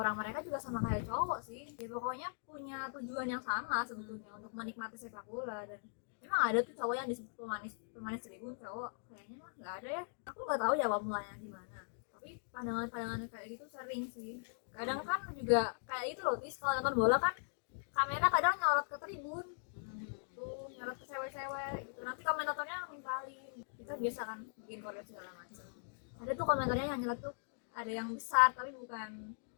mereka juga sama kayak cowok sih ya, pokoknya punya tujuan yang sama sebetulnya untuk menikmati sepak bola. Dan emang ada tuh cowok yang disebut pemanis tribun cowok, kayaknya mah nggak ada ya, aku nggak tahu ya awal mulanya gimana. Tapi pandangan kayak gitu sering sih. Kadang kan juga kayak itu loh Tis, kalau nonton bola kan kamera kadang nyorot ke tribun tuh, nyorot ke cewek-cewek gitu, nanti komentatornya nimpalin, kita biasa kan bikin koreografi segala macam. Ada tuh komentarnya yang nyorot tuh, ada yang besar tapi bukan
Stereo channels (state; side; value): silent; right; digital silence